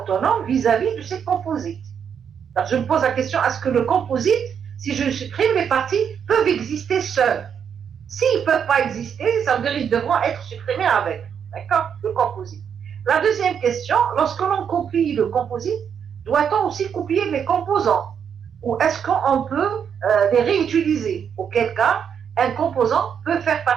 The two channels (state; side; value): quieter; left; 7.7 dB